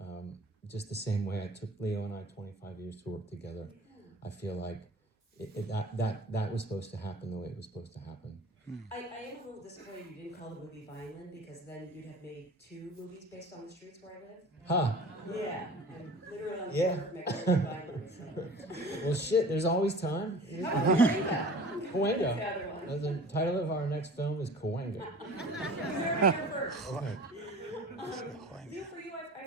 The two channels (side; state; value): both; normal; correlation 0.42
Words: just the same way it took Leo and I 25 years to work together. I feel like that was supposed to happen the way it was supposed to happen. I am a little disappointed you didn't call the movie Vineland, because then you'd have made 2 movies based on the streets where I live. Huh. Yeah, I'm literally on the Yeah. corner of Mexico and Vineland. So. Well, shit, there's always time. Cahuenga. Cahuenga. That's the other one. The title of our next film is Cahuenga. You heard it here first. Okay. Leo, for you,